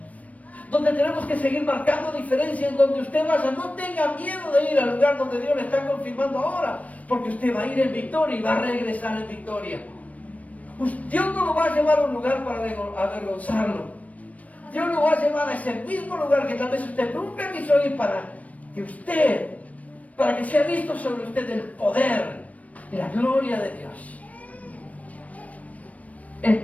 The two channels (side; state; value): right; late; 0.069 ms